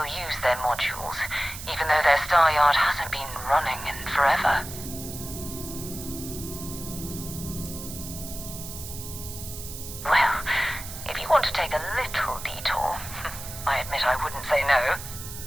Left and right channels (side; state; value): right; noise; hiss, 10 dB below the sound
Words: use their modules, even though their star yard hasn't been running in forever. Well, if you want to take a little detour, I admit I wouldn't say no.